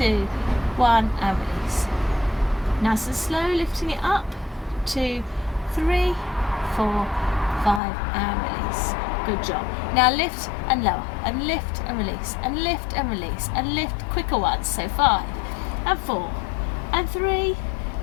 1, and release. Nice and slow, lifting it up, 2, 3, 4, 5, and release. Good job. Now lift and lower, and lift and release, and lift and release, and lift quicker ones. So 5, and 4, and 3,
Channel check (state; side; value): drops out; right; at 7.8 s